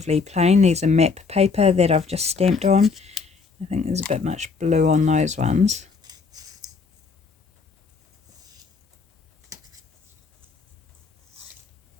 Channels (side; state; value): right; quieter; 4.9 dB